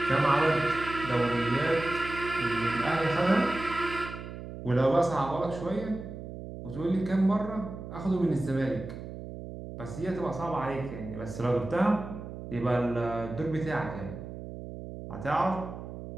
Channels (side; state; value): right; noise; hum, 10 dB below the sound